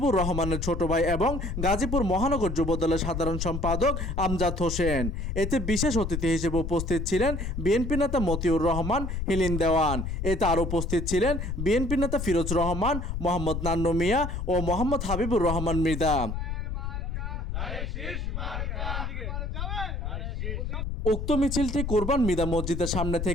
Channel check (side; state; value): left; noise; rumble, 3 dB below the sound